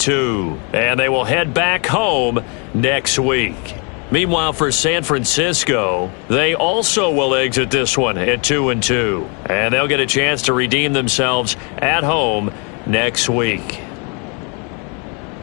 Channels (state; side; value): quieter; right; 34.9 dB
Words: And they will head back home next week. Meanwhile, for San Francisco, they also will exit this one at 2-2. And they'll get a chance to redeem themselves at home next week.